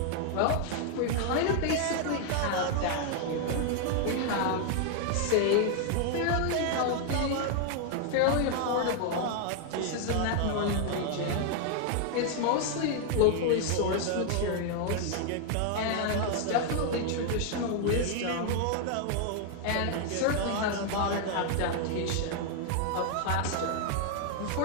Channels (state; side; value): different; both; correlation 0.00